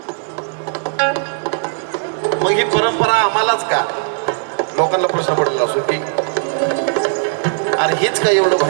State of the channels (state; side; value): silent; left; digital silence